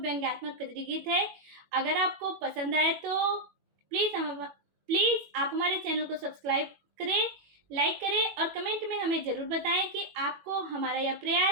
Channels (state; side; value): late; left; 21 ms